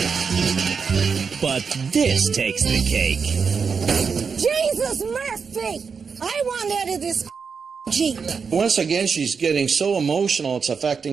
But this takes the cake. Jesus Murphy! I want out of this Jeep. Once again, she's getting so emotional, it's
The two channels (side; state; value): left; quieter; 5.7 dB